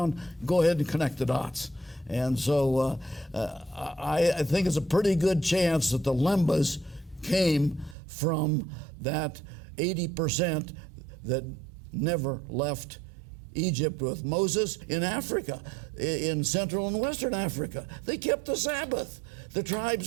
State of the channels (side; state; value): left; drops out; at 8.0 s